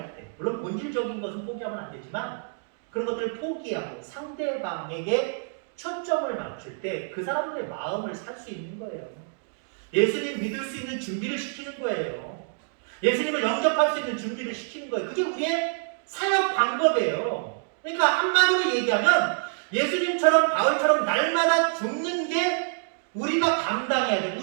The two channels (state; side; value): silent; left; digital silence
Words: 때, 물론 본질적인 것은 포기하면 안 되지만 그런 것들을 포기하고 상대방에게 초점을 맞출 때 그 사람들의 마음을 살 수 있는 거예요. 예수님 믿을 수 있는 준비를 시키는 거예요. 예수님을 영접할 수 있는 준비를 시키는 거예요. 그게 우리의 사역 방법이에요. 그러니까 한마디로 얘기하면 예수님처럼 바울처럼 날마다 죽는 게 우리가 감당해야 돼.